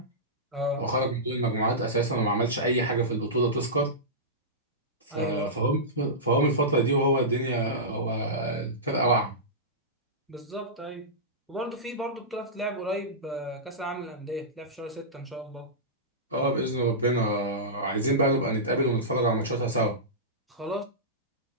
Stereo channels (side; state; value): both; normal; correlation -0.16